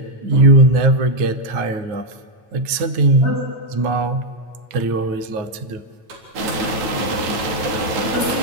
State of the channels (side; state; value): left; late; 8.9 ms